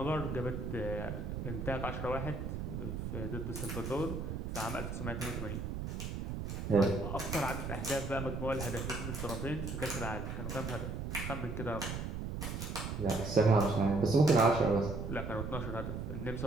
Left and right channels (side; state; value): right; noise; rumble, 4 dB below the sound